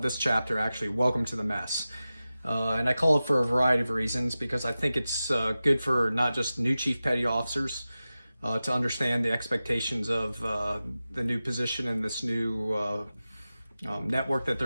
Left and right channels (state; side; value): inverted; both; correlation -0.95